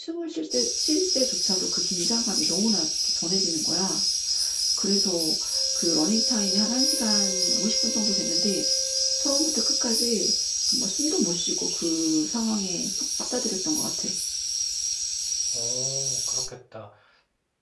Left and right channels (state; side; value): identical; both; correlation 1.00